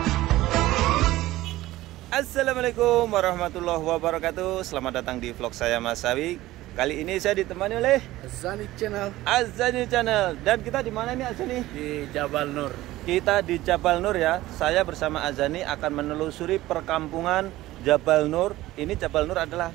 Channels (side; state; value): left; quieter; 16.7 dB